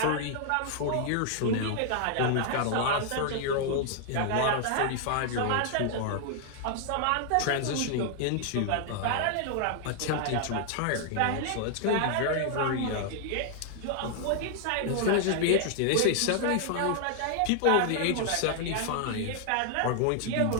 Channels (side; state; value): both; different; correlation 0.00